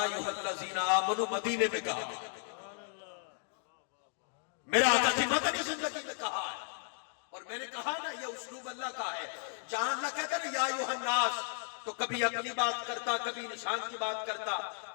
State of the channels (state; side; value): silent; right; 55 dB below the other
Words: الذین آمنو مدینے میں کہا، میرا آقا کی مدنی زندگی میں کہا ہے. اور میں نے کہا نا یہ اسلوب اللہ کا ہے. جہاں اللہ کہتا ہے نا یا ایوہ الناس تو کبھی اپنی بات کرتا، کبھی نشان کی بات کرتا،